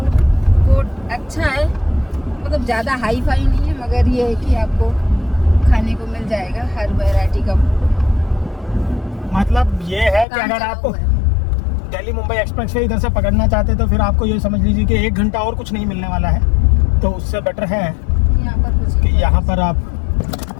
कोर्ट अच्छा है, मतलब ज़्यादा हाई फाई नहीं है, मगर ये है कि आपको खाने को मिल जाएगा हर वैरायटी का। मतलब ये है कि अगर आप दिल्ली मुंबई एक्सप्रेस वे इधर से पकड़ना चाहते तो फिर आपको ये समझ लीजिए कि 1 घंटा और कुछ नहीं मिलने वाला है। तो उससे बेटर है यहाँ पर कुछ कि यहाँ पर आप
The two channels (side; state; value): right; drops out; at 10.2 s